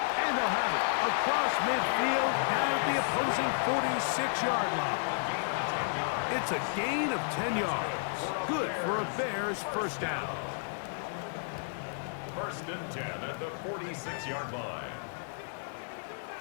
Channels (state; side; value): silent; right; digital silence